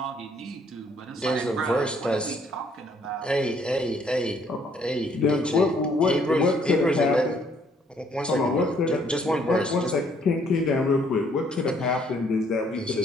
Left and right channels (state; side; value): normal; both; correlation 0.65